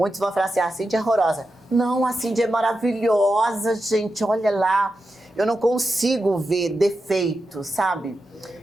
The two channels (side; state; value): both; normal; correlation 0.89